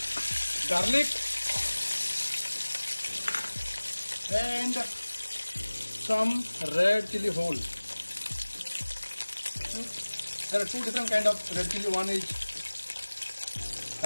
garlic and some red chili whole. There are two different kind of red chili. One is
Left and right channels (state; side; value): inverted; both; correlation -1.00